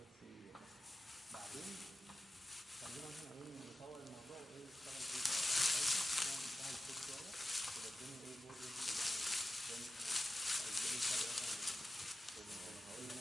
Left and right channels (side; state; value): both; normal; correlation 0.93